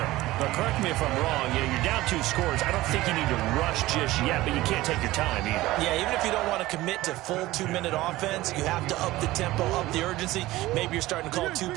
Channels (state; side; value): quieter; left; 17.5 dB